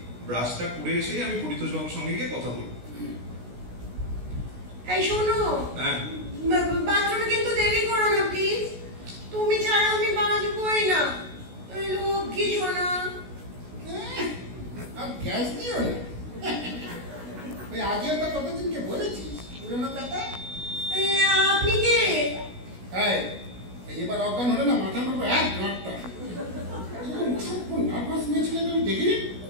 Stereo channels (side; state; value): left; late; 16 ms